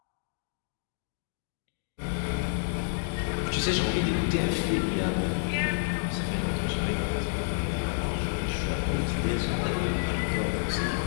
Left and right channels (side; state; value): right; silent; digital silence